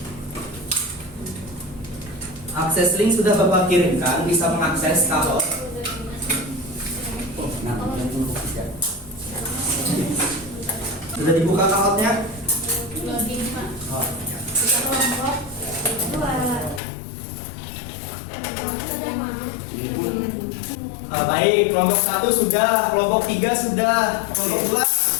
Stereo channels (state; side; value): drops out; right; at 16.8 s